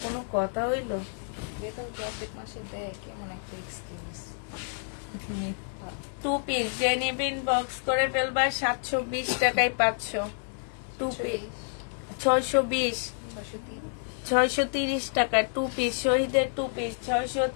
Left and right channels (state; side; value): silent; right; 59 dB below the other